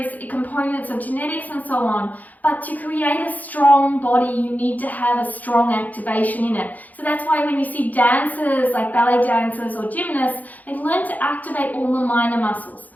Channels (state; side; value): late; right; 0.080 ms